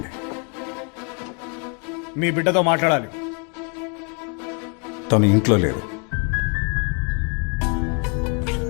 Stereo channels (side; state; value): right; quieter; 37.0 dB